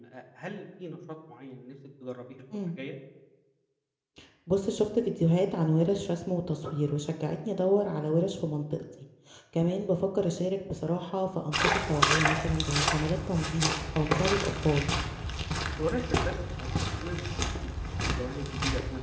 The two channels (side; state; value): both; identical; correlation 1.00